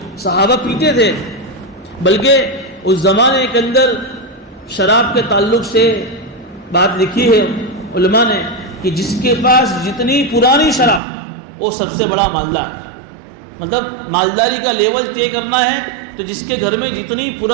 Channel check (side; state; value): left; drops out; at 11.0 s